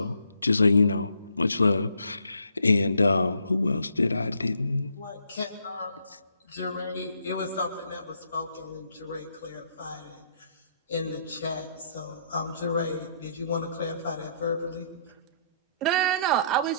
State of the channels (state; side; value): inverted; both; correlation -0.68